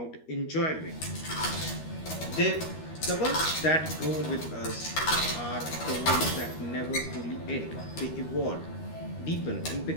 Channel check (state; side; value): late; right; 13 ms